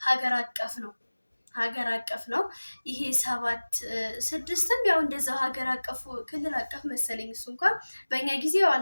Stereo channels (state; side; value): inverted; both; correlation -1.00